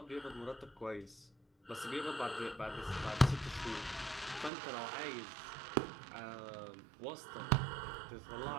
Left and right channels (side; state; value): left; drops out; at 4.5 s